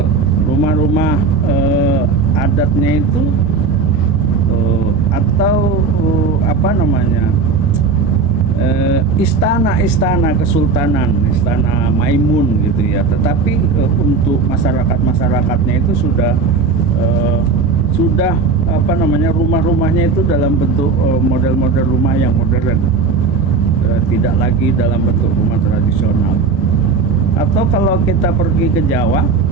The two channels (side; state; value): left; quieter; 4.5 dB